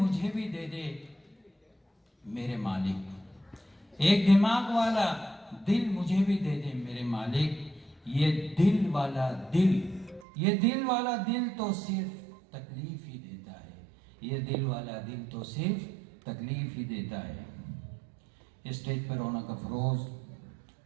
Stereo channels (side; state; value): left; drops out; at 10.2 s